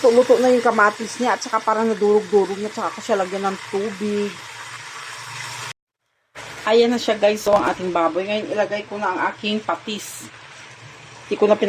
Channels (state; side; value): identical; both; correlation 1.00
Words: na yung kamatis niya at saka parang nadurog-durog niya, saka ko siya lagyan ng tubig. Ayan na siya guys, so ang ating baboy. Ngayon ilagay ko na ang aking patis. Hindi ko na